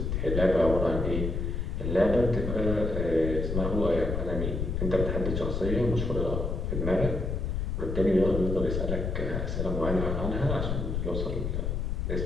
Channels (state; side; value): noise; left; rumble, 1 dB below the sound